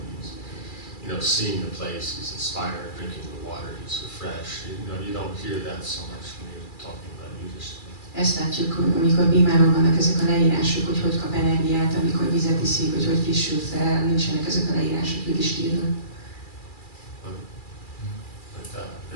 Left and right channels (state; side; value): late; right; 2.4 ms